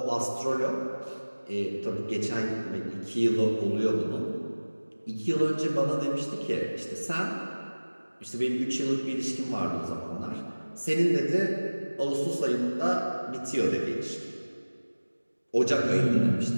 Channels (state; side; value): inverted; both; correlation -1.00